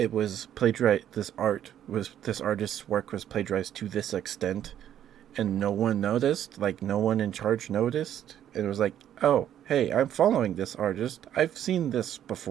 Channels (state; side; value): quieter; left; 10.6 dB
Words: artist's work was plagiarized to this extent, and no one noticed. Like, no one in charge noticed. It was like, oh, hey, I'm following this artist. I've seen this